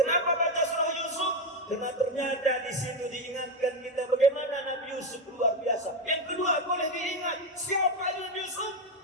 baca surah Yusuf? Karena ternyata di situ diingatkan kita bagaimana Nabi Yusuf luar biasa. Yang kedua boleh diingat siapa Nabi Yusuf?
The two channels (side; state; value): both; normal; correlation 0.11